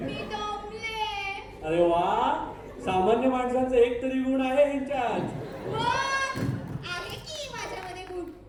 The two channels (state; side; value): identical; both; correlation 1.00